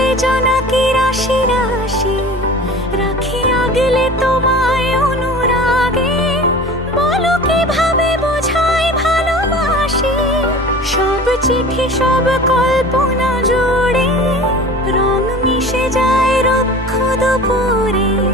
জোনাকি রাশি রাশি। রাখি আগলে তোমায় অনুরাগে, বলো কিভাবে বোঝাই ভালোবাসি। সব চিঠি সব কল্পনা জুড়ে রং মিশে যায় রুক্ষ দুপুরে।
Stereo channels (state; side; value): normal; both; correlation 0.39